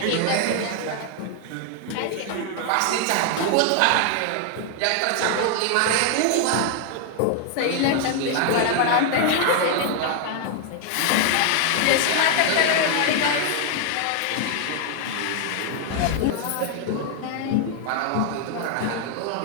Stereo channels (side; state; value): both; different; correlation 0.00